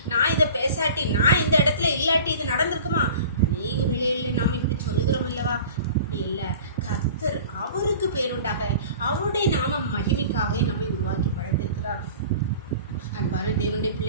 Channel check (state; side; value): inverted; both; correlation -0.42